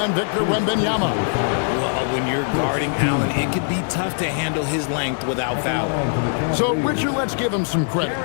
Victor Wembanyama. Well, when you're guarding Allen, it can be tough to handle his length without fouling. So, Richard, let's give him some credit.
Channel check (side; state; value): right; silent; digital silence